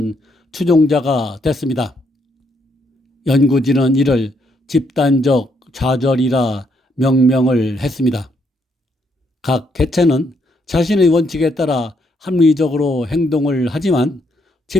추종자가 됐습니다. 연구진은 이를 집단적 좌절이라 명명을 했습니다. 각 개체는 자신의 원칙에 따라 합리적으로 행동을 하지만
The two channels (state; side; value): normal; both; correlation 0.74